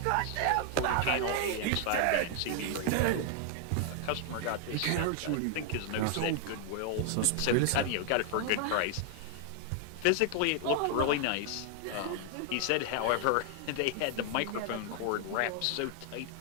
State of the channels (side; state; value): both; different; correlation 0.00